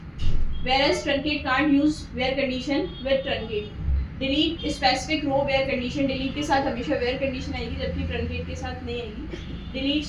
whereas truncate can't use where condition with truncate. Delete specific row where condition. Delete के साथ हमेशा where condition आएगी जबकि truncate के साथ नहीं आएगी. Delete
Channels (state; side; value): identical; both; correlation 1.00